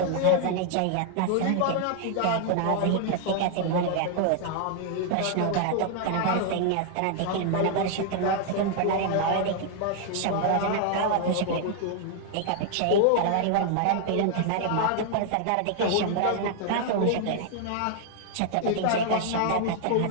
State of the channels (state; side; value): different; both; correlation 0.00